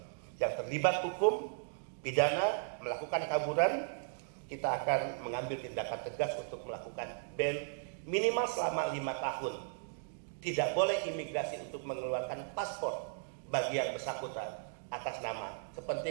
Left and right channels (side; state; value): left; silent; digital silence